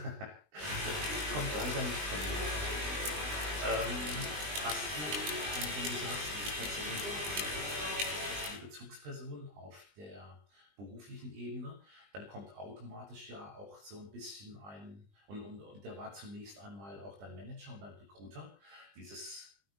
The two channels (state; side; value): late; left; 20 ms